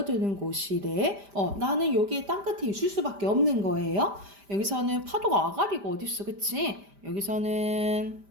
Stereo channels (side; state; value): left; late; 5.0 ms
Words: 곳이래. 나는 여기에 땅끝에 있을 수밖에 없는 거예요. 여기서는 파도가 아가리가 어딨어, 그치? 여기서는